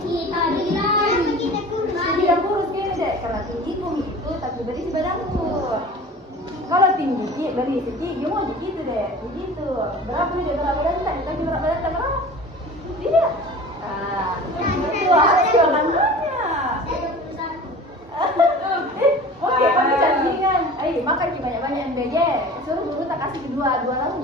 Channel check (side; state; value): both; normal; correlation 0.40